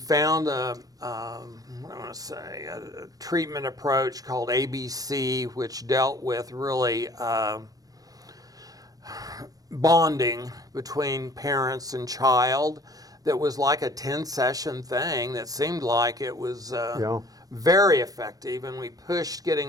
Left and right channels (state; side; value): late; left; 0.18 ms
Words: a treatment approach called ABC, which dealt with really bonding between parents and child. That was like a 10-session thing that seemed like it was very effective, and we pushed